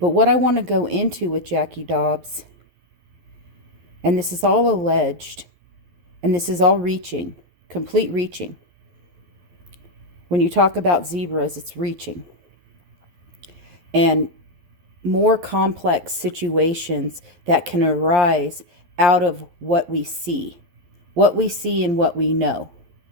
But what I want to go into with Jackie Dobbs, and this is all alleged, and this is all reaching, complete reaching. When you talk about zebras, it's reaching. And more complex situations that can arise out of what we see and what we know.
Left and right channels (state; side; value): late; left; 11 ms